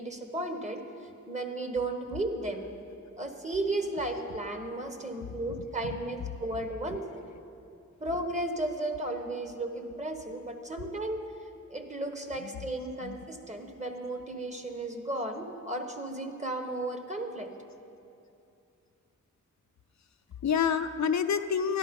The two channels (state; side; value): normal; both; correlation 0.27